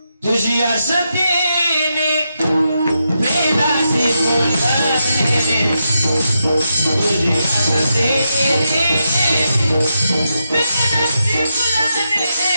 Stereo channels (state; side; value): inverted; both; correlation -0.85